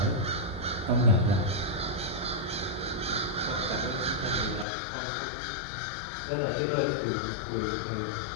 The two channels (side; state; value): right; drops out; at 4.7 s